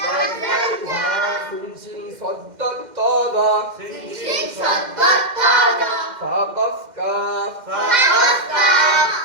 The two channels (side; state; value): left; late; 2.1 ms